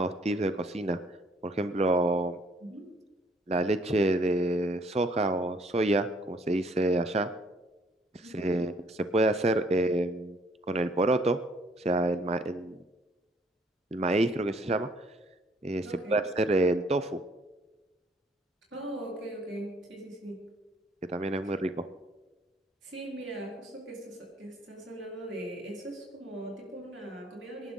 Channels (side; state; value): both; normal; correlation 0.63